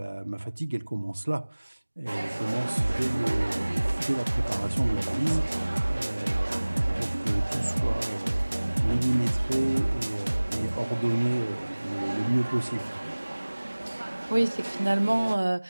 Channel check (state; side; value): inverted; both; correlation -1.00